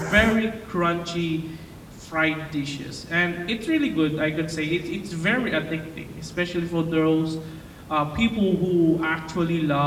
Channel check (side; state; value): both; identical; correlation 1.00